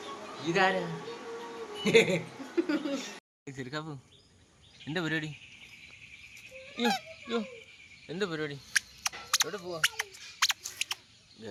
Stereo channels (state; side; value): identical; both; correlation 1.00